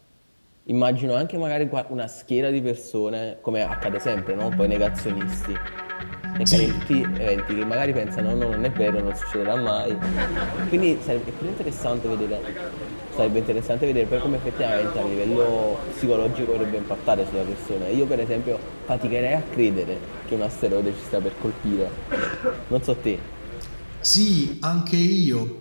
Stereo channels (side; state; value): both; inverted; correlation -1.00